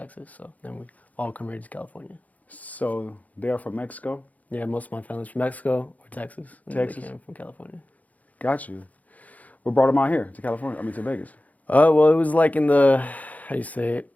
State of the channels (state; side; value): late; right; 0.075 ms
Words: So then we all come here to California. So they're from Mexico? Yeah, most of my family's from Mexico or Texas. And Texas? They came from California. Got you. What brought them out here to California? To Vegas? Well, it was like in the,